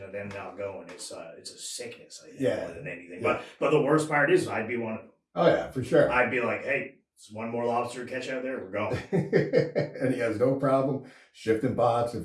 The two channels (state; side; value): identical; both; correlation 1.00